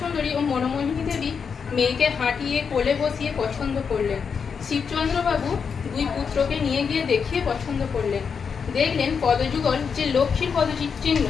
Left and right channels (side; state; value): right; quieter; 6.2 dB